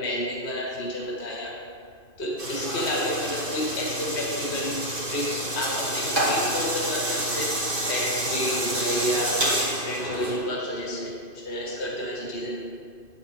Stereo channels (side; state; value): right; late; 2.5 ms